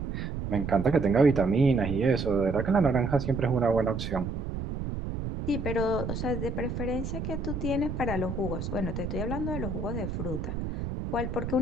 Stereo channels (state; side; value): noise; right; rumble, 5 dB below the sound